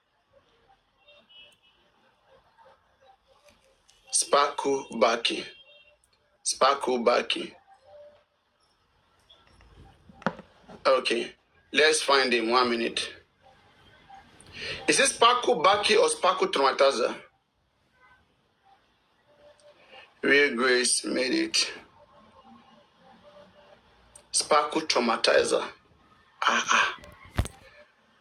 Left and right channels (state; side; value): identical; both; correlation 1.00